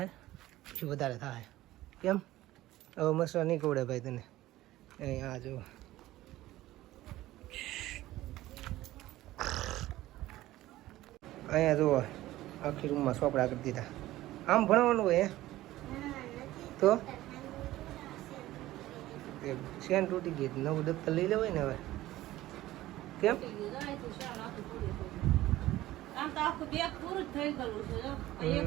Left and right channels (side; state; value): left; quieter; 16.0 dB